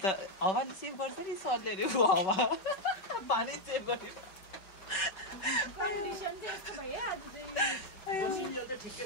त हावाले सेभ गर्छ नि सरले अरे हावा पानी सेभ गर्ने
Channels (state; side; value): late; right; 5.3 ms